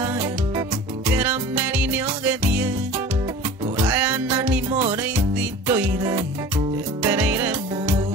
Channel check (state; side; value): normal; both; correlation 0.40